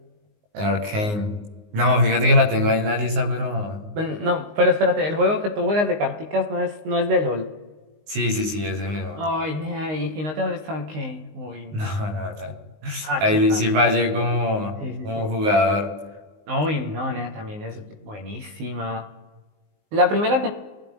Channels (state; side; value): late; left; 19 ms